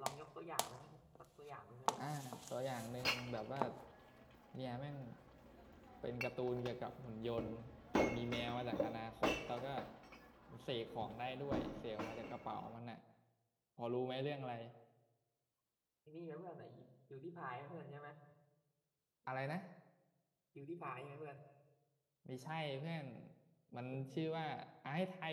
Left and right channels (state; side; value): identical; both; correlation 1.00